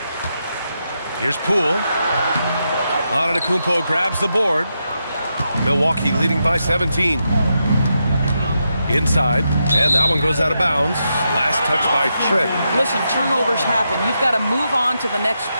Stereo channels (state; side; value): inverted; both; correlation -0.84